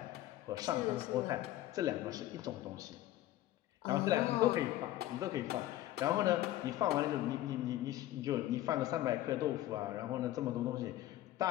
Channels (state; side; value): quieter; right; 14.5 dB